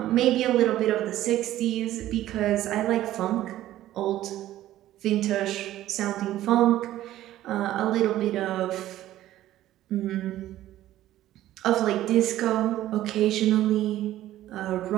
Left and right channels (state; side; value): quieter; left; 13.9 dB